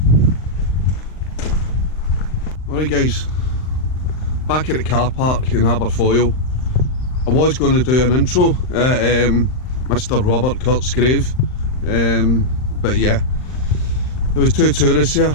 Alright guys, back at the car park in Aberdoyle. I was going to do an intro at Mr. Robert Kurt's grave, but yeah, there was two tourists here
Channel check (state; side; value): late; right; 39 ms